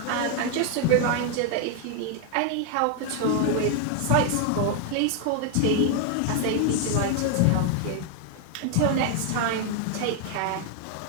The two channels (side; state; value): both; different; correlation 0.01